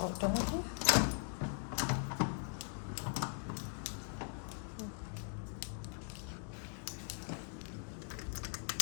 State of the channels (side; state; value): right; silent; 51 dB below the other